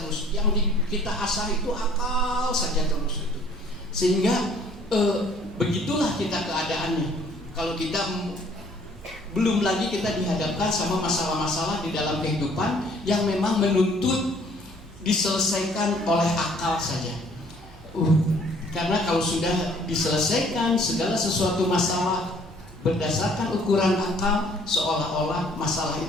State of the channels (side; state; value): both; normal; correlation 0.58